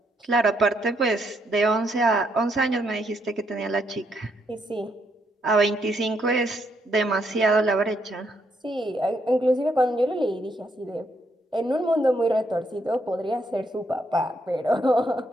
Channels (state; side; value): normal; both; correlation 0.75